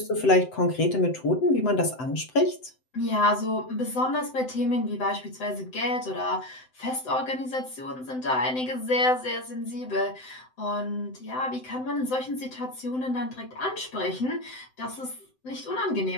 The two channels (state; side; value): late; right; 7.8 ms